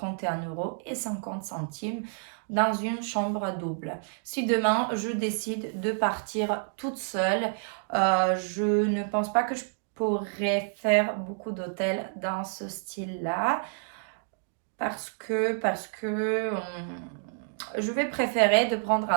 € dans une chambre double. Si demain, je décide de partir toute seule, je ne pense pas que je pourrais faire beaucoup d'hôtels dans ce style-là parce que je vais préférer de prendre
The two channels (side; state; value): left; silent; digital silence